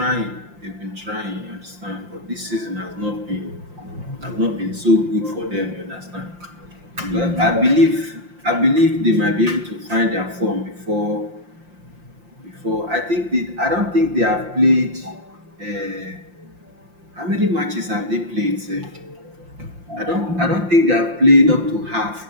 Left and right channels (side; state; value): left; late; 5.7 ms